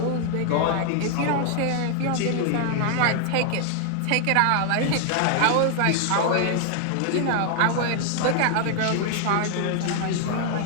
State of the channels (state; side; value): different; both; correlation 0.00